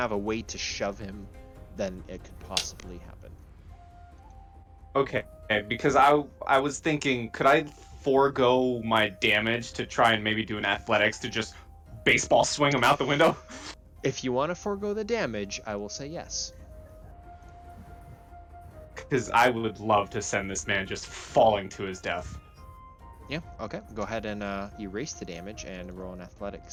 a way to shove him, then it could possibly happen. Okay, because I was thinking, could I forego my damage to try and maybe do an athletics to just baseball swing him out the window? If you want to forego the damage, I will say yes. Because I would love to send this man just falling to his death. Yeah, okay. Go ahead and erase the damage and roll an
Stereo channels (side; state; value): both; identical; correlation 1.00